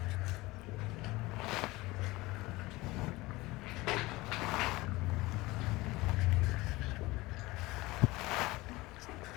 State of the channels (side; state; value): right; quieter; 20.7 dB